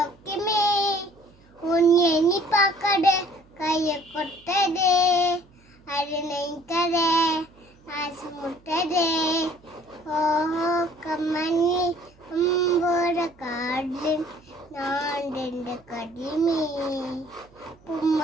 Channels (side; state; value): right; noise; hum, 29 dB below the sound